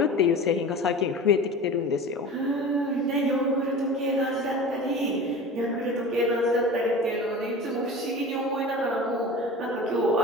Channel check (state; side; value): normal; both; correlation 0.35